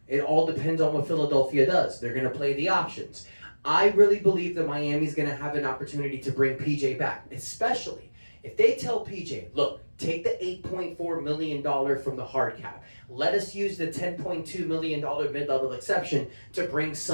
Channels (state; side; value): inverted; both; correlation -1.00